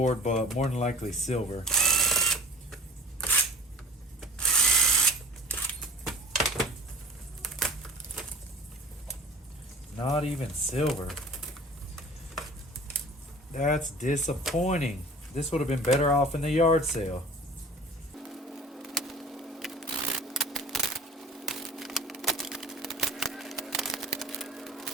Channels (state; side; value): normal; both; correlation 0.43